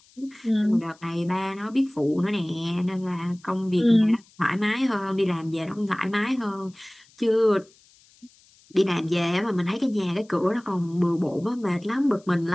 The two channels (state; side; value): noise; left; hiss, 29 dB below the sound